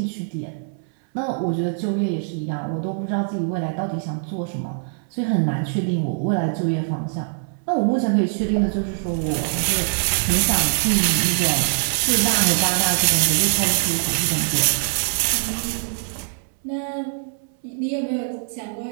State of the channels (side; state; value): left; silent; 64 dB below the other